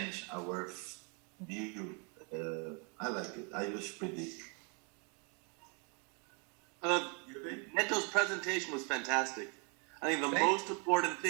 our view. I like it. I use 3D. Neto's presentation was fantastic. I think the most important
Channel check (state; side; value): quieter; left; 35.4 dB